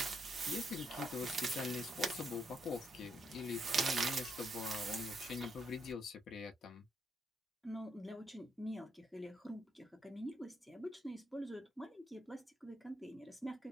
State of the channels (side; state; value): both; normal; correlation 0.77